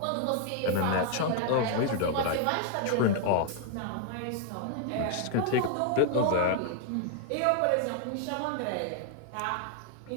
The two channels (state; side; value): different; both; correlation 0.00